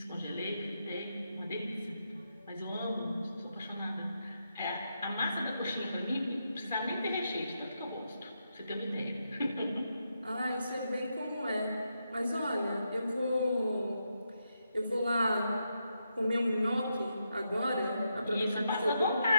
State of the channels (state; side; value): inverted; both; correlation -0.83